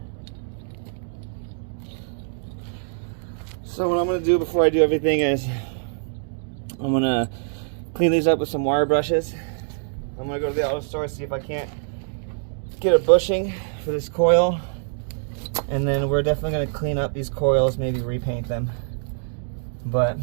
So what I'm going to do before I do everything is I'm going to clean these up with some wire brushes. I'm going to go to the auto store, see if I can't get a bushing for this coil. And then we're definitely going to clean up these coils, maybe repaint them. But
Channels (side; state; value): left; silent; digital silence